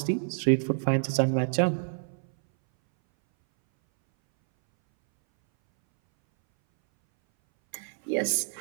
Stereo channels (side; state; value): left; silent; 60 dB below the other